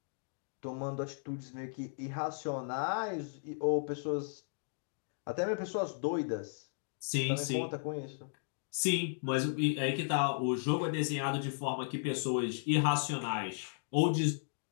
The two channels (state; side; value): silent; right; digital silence